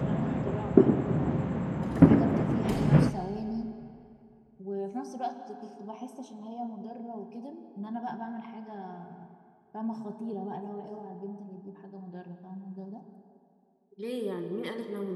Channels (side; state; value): both; identical; correlation 1.00